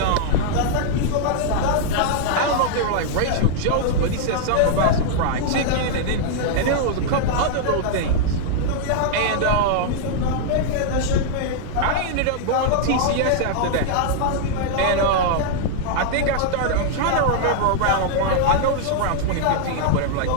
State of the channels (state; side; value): different; both; correlation -0.01